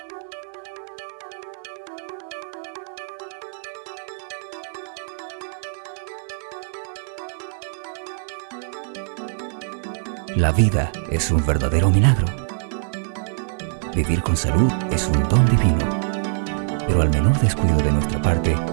La vida es un verdadero milagro. Vivir con salud es un don divino. Pero al menor descuido de nuestra parte,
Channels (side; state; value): left; silent; digital silence